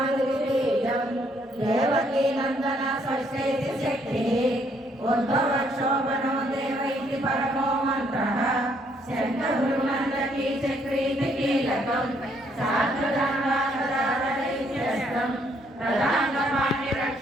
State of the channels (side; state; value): both; normal; correlation 0.69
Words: देवकी नंदन षष्ठेति शक्तिः उद्भवक्षोभनो देव इति परमो मन्त्रः शङ्खगुरुनन्दकी चक्रीति कीलकं साधुदानदारदैत्यस्तं